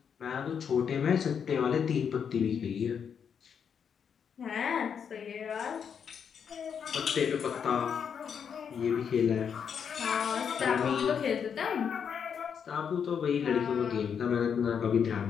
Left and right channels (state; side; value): quieter; right; 7.3 dB